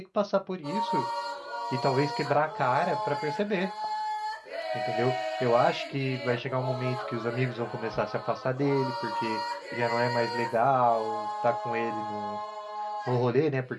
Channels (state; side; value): identical; both; correlation 1.00